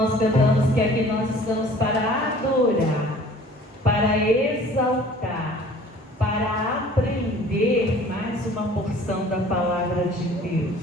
cantamos que aqui nós estamos para adorar, para exaltar, para aprender mais uma porção da palavra de Deus.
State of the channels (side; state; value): both; normal; correlation 0.50